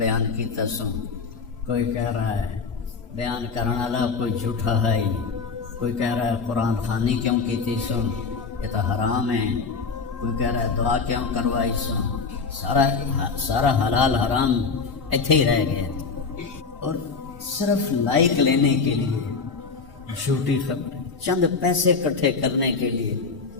کی تسوں، کوئی کہہ رہا ہے بیان کرنے والا کوئی جھوٹا ہے ہی، کوئی کہہ رہا ہے قرآن خوانی کیوں کی تھی سن، یہ تو حرام ہے، کوئی کہہ رہا ہے دعا کیوں کروائی سن. سارا حلال حرام ایتھے ہی رہ گیا، اور صرف لائک لینے کے لیے جھوٹی خبریں، چند پیسے اکٹھے کرنے کے لیے.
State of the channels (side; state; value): right; quieter; 4.9 dB